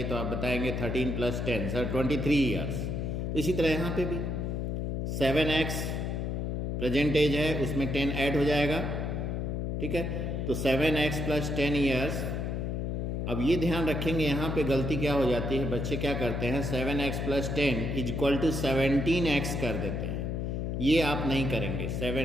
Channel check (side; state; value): left; noise; hum, 1 dB below the sound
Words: तो आप बताएंगे 13 + 10 सर 23 years. इसी तरह यहाँ पे भी 7x प्रेजेंट एज है, उसमें 10 ऐड हो जाएगा. ठीक है, तो 7x + 10 years. अब ये ध्यान रखेंगे यहाँ पे गलती क्या हो जाती है, बच्चे क्या करते हैं 7x + 10 = 17x कर देते हैं. ये आप नहीं करेंगे,